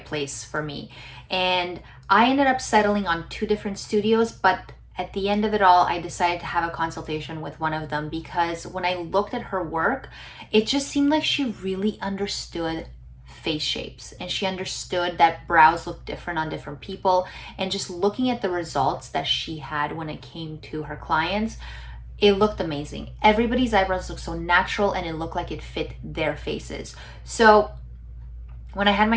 place for me. And I ended up settling on 2 different studios, but at the end of it all, I decided to have a consultation with one of them because when I looked at her work, it just seemed like she really understood face shapes, and she understood that brows look different on different people. And just looking at the results that she had when it came to her clients, it looked amazing. Everybody's eyebrows looked so natural, and it looked like it fit their faces. So when I had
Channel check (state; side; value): identical; both; correlation 1.00